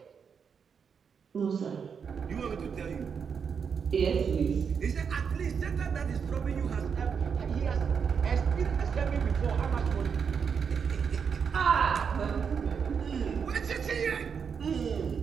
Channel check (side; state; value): left; quieter; 6.6 dB